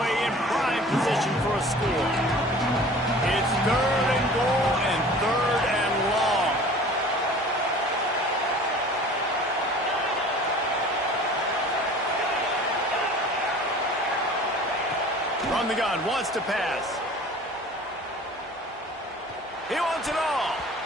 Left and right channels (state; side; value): normal; both; correlation 0.44